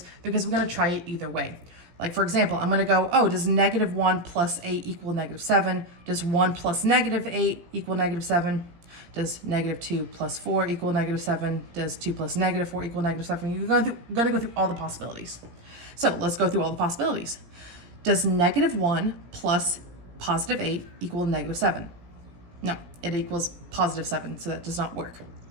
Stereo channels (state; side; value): late; left; 17 ms